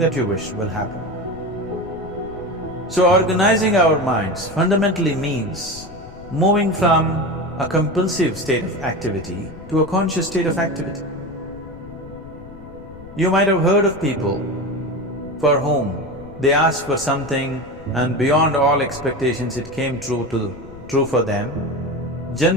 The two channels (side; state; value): left; noise; rumble, 18 dB below the sound